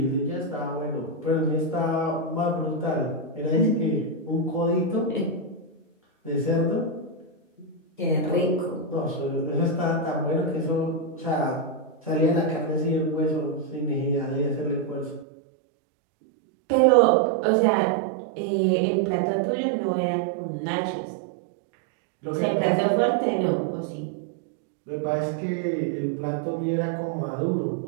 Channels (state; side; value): drops out; left; at 15.2 s